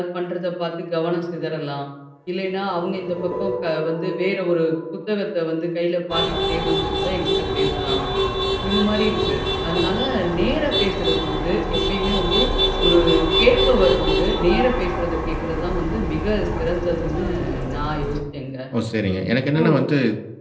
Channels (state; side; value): identical; both; correlation 1.00